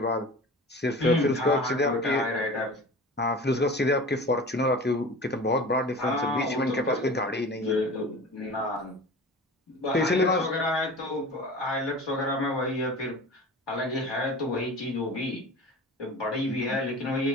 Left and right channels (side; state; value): both; normal; correlation 0.37